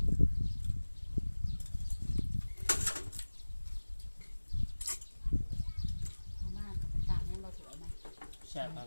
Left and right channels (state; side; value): inverted; both; correlation -1.00